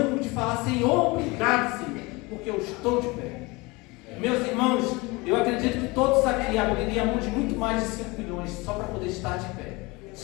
de falar: Senhor, obrigado, Senhor, porque eu estou de pé? Meus irmãos, eu acredito que todos aqui abririam mão de muito mais de 5 milhões só para poder estar de pé,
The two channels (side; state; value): right; quieter; 24.7 dB